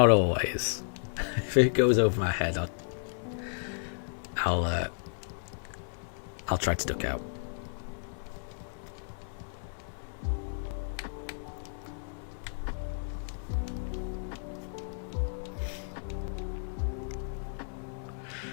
always. If it goes over my head, I'll try to duck out.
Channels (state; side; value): silent; right; 56 dB below the other